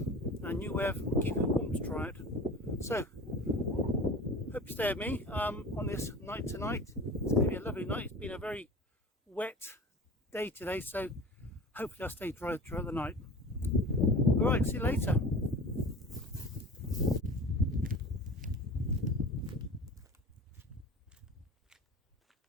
and a new way of keeping warm to try out. So, hope you stay with me on this night tonight. It's going to be a lovely night. It's been a very wet day today, so hopefully I'll stay dry throughout the night. Alright, see you later.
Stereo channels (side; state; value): both; normal; correlation 0.37